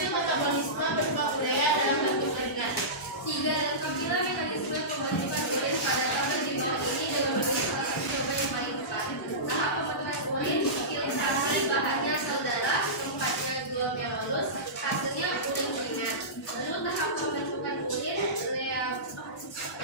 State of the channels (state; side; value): normal; both; correlation -0.19